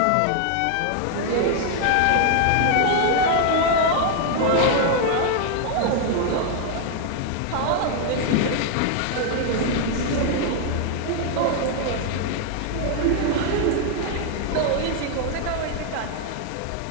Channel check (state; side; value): different; both; correlation 0.00